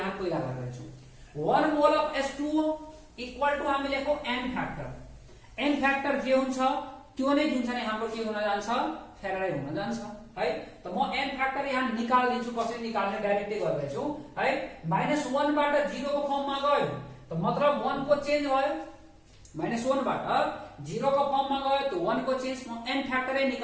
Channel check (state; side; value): identical; both; correlation 1.00